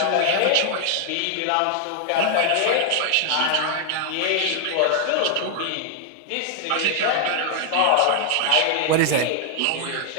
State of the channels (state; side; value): different; both; correlation 0.00